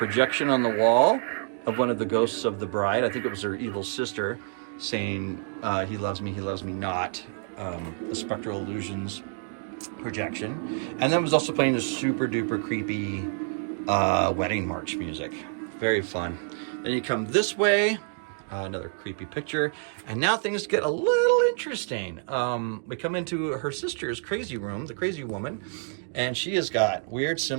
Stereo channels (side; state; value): left; silent; 60 dB below the other